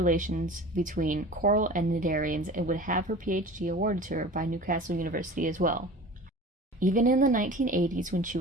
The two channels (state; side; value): normal; both; correlation 0.39